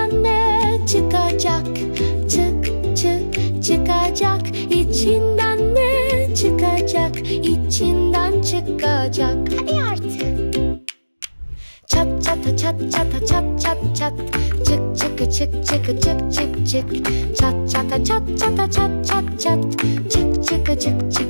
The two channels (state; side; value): inverted; both; correlation -1.00